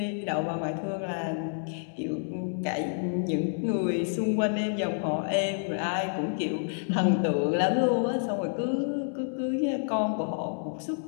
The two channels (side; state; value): right; silent; digital silence